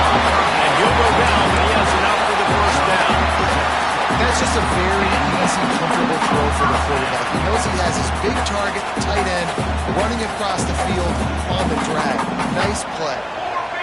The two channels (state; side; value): identical; both; correlation 1.00